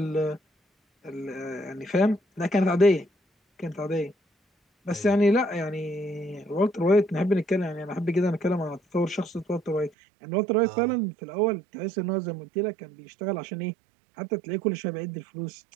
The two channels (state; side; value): drops out; left; at 9.9 s